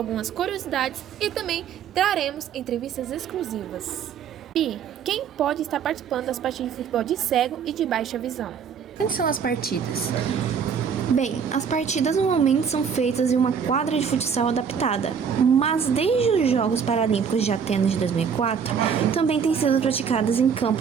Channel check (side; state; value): left; quieter; 6.9 dB